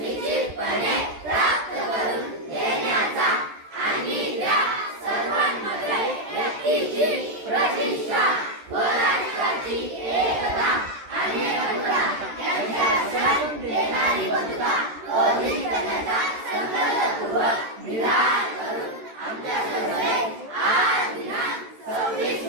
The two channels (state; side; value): late; left; 13 ms